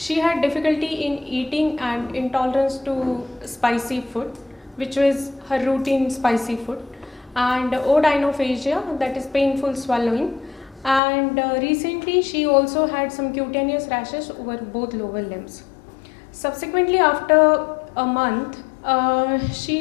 had difficulty in eating and intolerance to spicy food, which was her routine spicy food, and odynophagia, that is painful swallowing, and recently she also had some cutaneous rashes over both lower limbs. Subsequently, after a month,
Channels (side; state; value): right; drops out; at 11.0 s